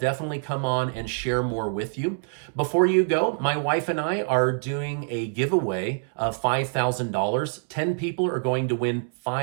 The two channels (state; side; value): silent; left; 61 dB below the other